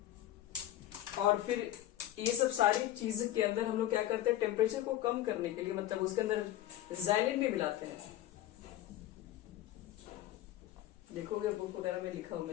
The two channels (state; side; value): quieter; right; 13.4 dB